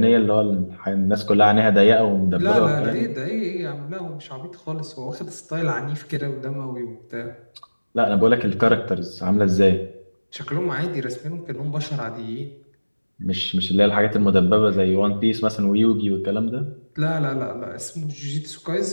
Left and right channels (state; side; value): inverted; both; correlation -1.00